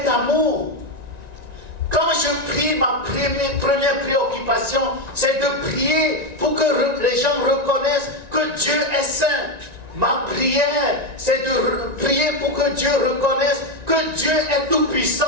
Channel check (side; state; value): left; late; 1.9 ms